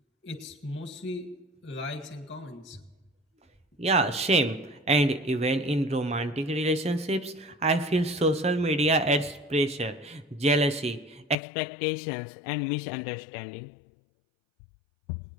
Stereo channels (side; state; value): right; drops out; at 11.4 s